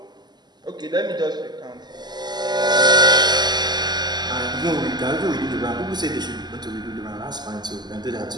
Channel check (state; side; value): late; left; 0.21 ms